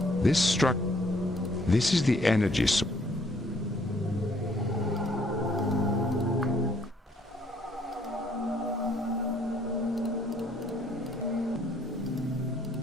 This struck... This is the energy source.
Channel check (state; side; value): normal; both; correlation 0.65